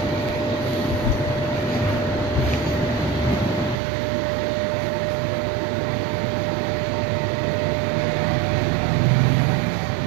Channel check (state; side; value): drops out; left; at 3.8 s